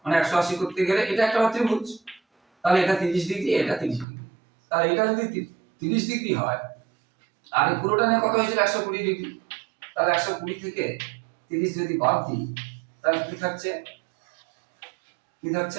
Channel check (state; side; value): drops out; left; at 4.0 s